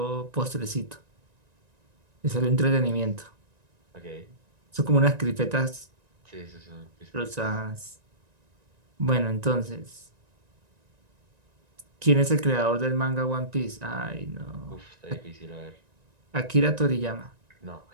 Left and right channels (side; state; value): left; late; 1.9 ms